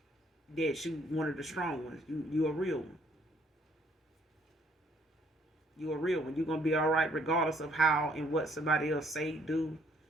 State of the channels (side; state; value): both; normal; correlation 0.65